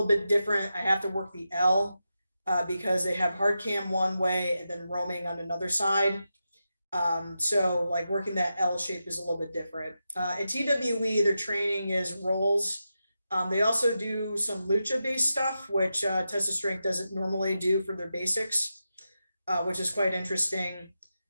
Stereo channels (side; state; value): both; inverted; correlation -0.89